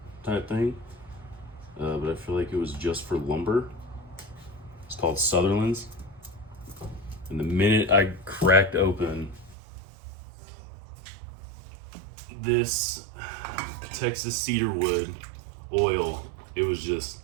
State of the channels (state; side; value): drops out; left; at 9.6 s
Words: type thing, but I feel like it was just for lumber. It's called Sutherland's. And the minute I cracked open this Texas cedar wood oil, it